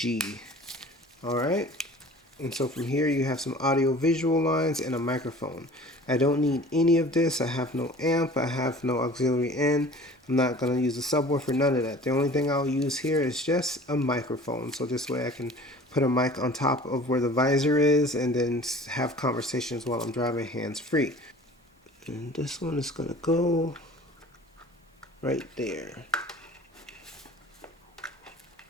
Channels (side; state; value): both; normal; correlation 0.45